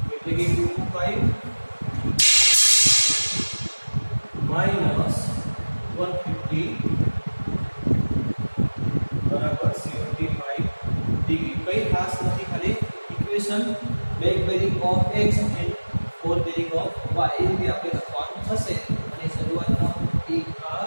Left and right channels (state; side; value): inverted; both; correlation -1.00